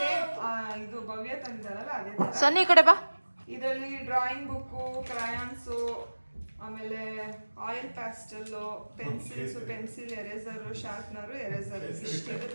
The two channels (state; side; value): inverted; both; correlation -1.00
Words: ಇದು ಭವ್ಯ ತಂದಿದ್ದಾಳಲ್ಲ ಅದೇ ತರ. ಸನ್ನಿ ಕಡೆ ಬಾ. ಇದರಲ್ಲಿ ಡ್ರಾಯಿಂಗ್ ಬುಕ್ಕು, ಕ್ರಯಾನ್ಸು, ಆಮೇಲೆ oil pastel, pencils, pencil eraser, sharpener, eraser